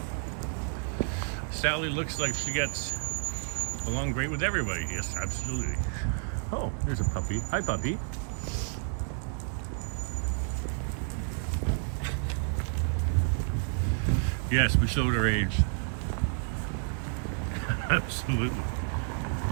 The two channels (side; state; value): left; silent; 58 dB below the other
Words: Sally looks like she gets along great with everybody. Yes, absolutely. Oh, there's a puppy. Hi, puppy. Yes, we showed our age. Absolutely.